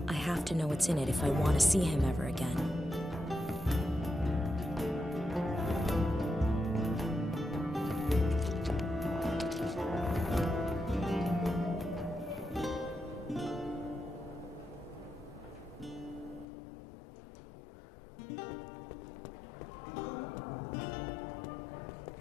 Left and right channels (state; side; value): drops out; right; at 16.4 s